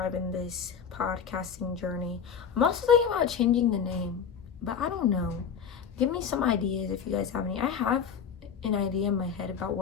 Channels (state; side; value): quieter; right; 7.1 dB